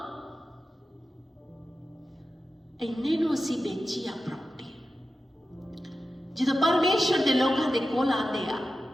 ਇੰਨੇ ਨੂੰ ਅਸੀਂ ਵੇਚੀ ਆ ਪ੍ਰਾਪਰਟੀ। ਜਦੋਂ ਪਰਮੇਸ਼ਰ ਦੇ ਲੋਕਾਂ ਦੇ ਕੋਲ ਆਉਂਦੇ ਆ,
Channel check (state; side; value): normal; both; correlation 0.92